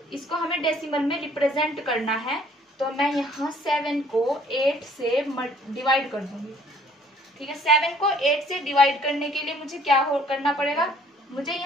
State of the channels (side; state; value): both; normal; correlation 0.59